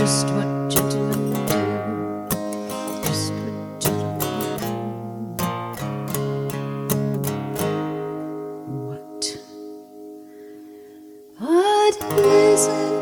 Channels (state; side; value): identical; both; correlation 1.00